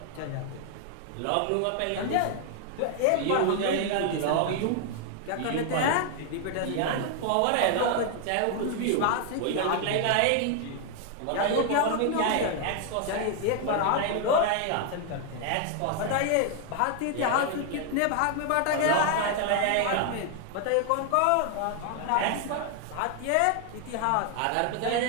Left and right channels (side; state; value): both; different; correlation 0.00